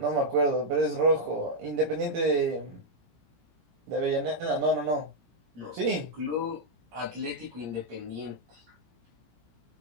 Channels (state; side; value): late; left; 17 ms